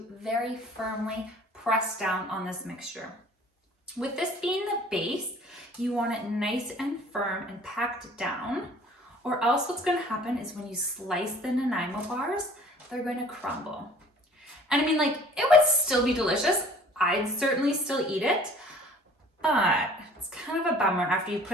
very firmly press down on this mixture. With this being the base, you want it nice and firm and packed down, or else what's going to happen is when you slice the Nanaimo bars, they're going to crumble. And I mean, like, it would still be delicious. I'd certainly still eat it, but it's kind of a bummer after you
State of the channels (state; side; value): normal; both; correlation 0.51